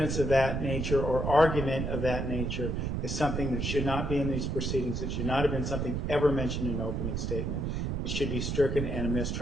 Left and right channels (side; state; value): right; noise; rumble, 1 dB below the sound